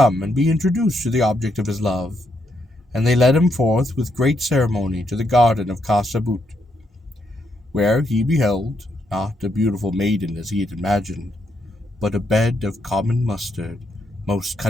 and be introduced to the object of his love, and they led him forth with great ceremony to the garden of Khasabut, where he beheld, not a beautiful maiden as he had imagined, but a bed of common mustard, most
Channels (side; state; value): both; normal; correlation 0.78